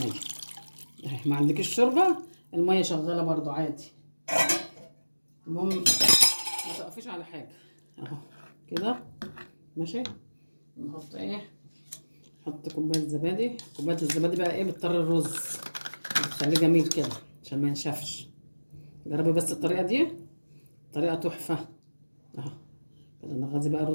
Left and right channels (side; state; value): both; inverted; correlation -1.00